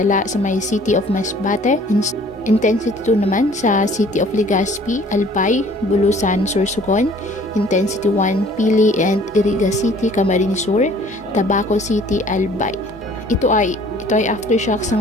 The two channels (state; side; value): normal; both; correlation 0.54